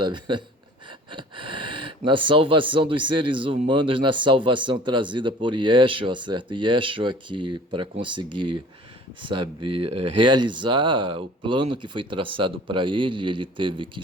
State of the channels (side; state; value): both; normal; correlation 0.47